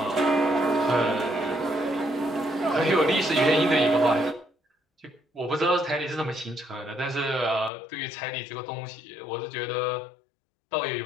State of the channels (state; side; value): drops out; right; at 7.7 s